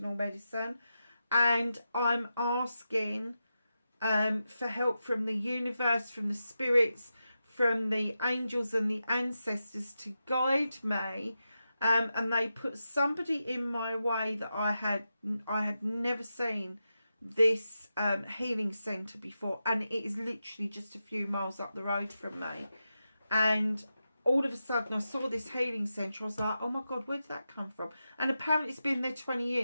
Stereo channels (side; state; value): both; inverted; correlation -0.89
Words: medicine, and I'm asking for help from the universe, from the spirits, from the angels and the ancestors to guide me. And they put somebody in my way that I had never seen this healing centre before, and it is literally just a few miles up the road from me. And all of a sudden I saw this healing centre. I was like, oh my God, where did that come from? And apparently it's been there 20